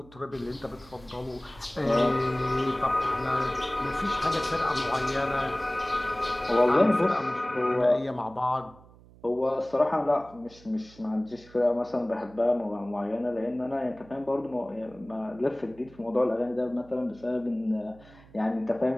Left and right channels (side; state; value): right; noise; hum, 23 dB below the sound